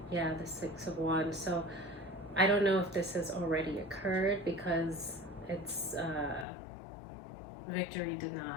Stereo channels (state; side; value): drops out; right; at 6.5 s